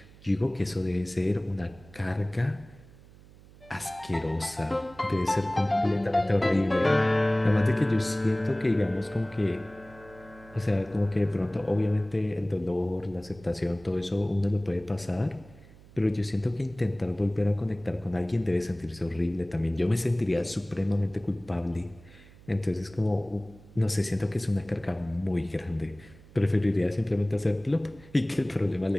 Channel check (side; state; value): right; noise; hum, 23 dB below the sound